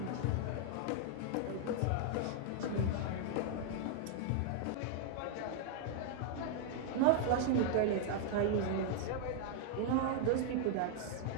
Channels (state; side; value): different; both; correlation 0.00